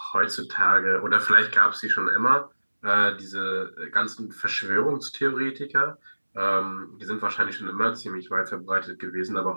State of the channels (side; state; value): both; inverted; correlation -1.00